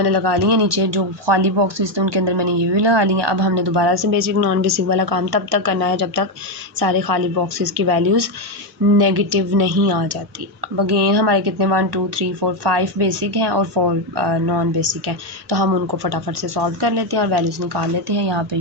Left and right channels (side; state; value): both; normal; correlation 0.07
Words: लगा ली हैं नीचे, जो खाली बॉक्सेस थे उनके अंदर मैंने ये भी लगा ली हैं। अब हमने दोबारा से बेसिक नॉन बेसिक वाला काम तब तक करना है जब तक सारे खाली बॉक्सेस की वैल्यूज़ नेगेटिव नहीं आ जाती। अब अगेन हमारे कितने 1 2 3 4 5 बेसिक हैं और 4 नॉन बेसिक हैं, तो हम उनको फटाफट से सॉल्व कर लेते हैं और वैल्यूज़ निकाल लेते हैं। यहाँ पे